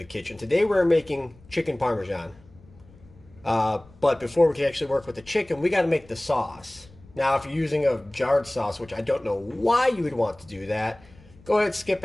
kitchen. Today we're making chicken parmesan. But before we can actually work with the chicken, we got to make the sauce. Now, if you're using a jarred sauce, which I don't know why you would want to do that, go ahead and skip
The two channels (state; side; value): noise; left; rumble, 25 dB below the sound